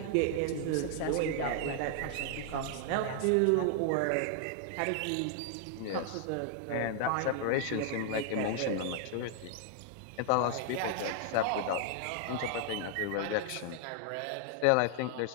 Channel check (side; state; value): both; different; correlation 0.00